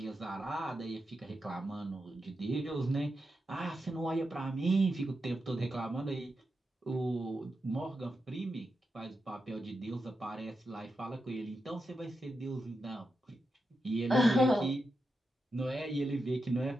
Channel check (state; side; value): normal; both; correlation 0.87